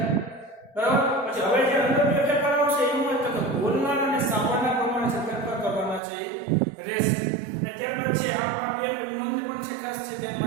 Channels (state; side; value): drops out; left; at 6.0 s